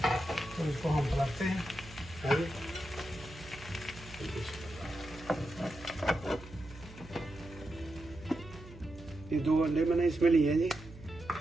तो इसको हम पलटते हैं। ये 2 अंडे मैंने इसमें लिए हैं जी।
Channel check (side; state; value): right; noise; hum, 17 dB below the sound